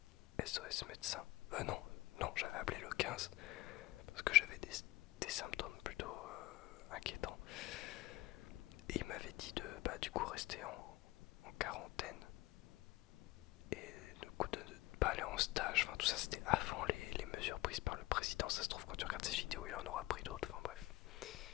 SOS médecin. Non, non, j'avais appelé le 15 parce que j'avais des symptômes plutôt inquiétants. Et il m'avait dit de du coup rester en quarantaine et du coup de ne pas aller en stage. Enfin, tout ça, c'était avant les mesures prises par le président. Ça se trouve, quand tu regardes ces vidéos, il en aura pris d'autres. Enfin, bref.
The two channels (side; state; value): right; quieter; 19.3 dB